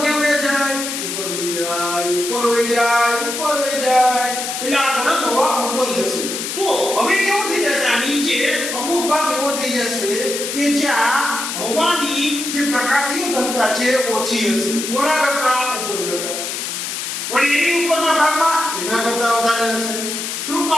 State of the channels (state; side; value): noise; left; hiss, 4 dB below the sound